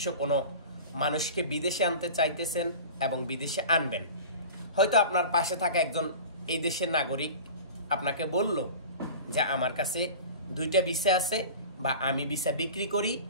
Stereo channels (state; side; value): inverted; both; correlation -0.36